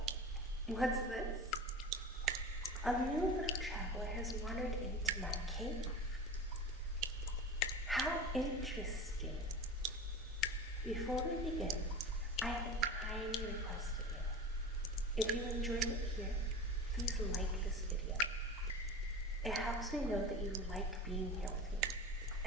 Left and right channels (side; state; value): both; normal; correlation 0.31